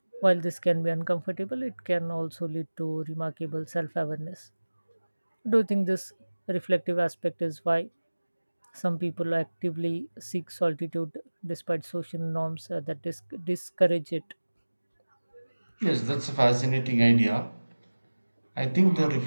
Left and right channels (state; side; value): inverted; both; correlation -1.00